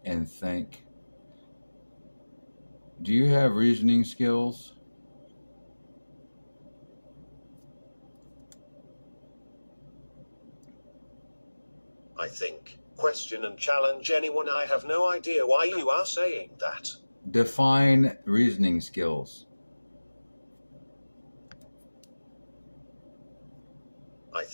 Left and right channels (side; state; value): both; inverted; correlation -1.00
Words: and think? Do you have reasoning skills? I think, question, and challenge anyone. I have no idea why you are saying that. Define reasoning skills. I